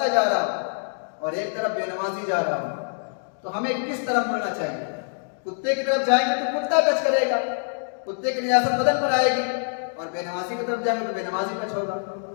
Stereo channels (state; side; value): silent; right; digital silence